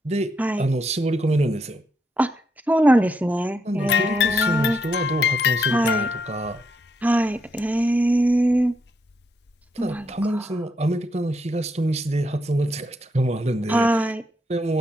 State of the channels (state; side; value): normal; both; correlation 0.79